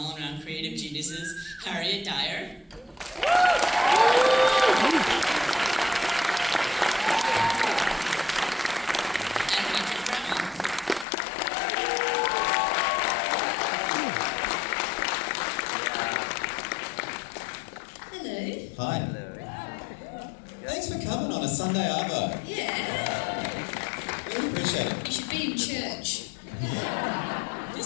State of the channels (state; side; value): drops out; right; at 11.1 s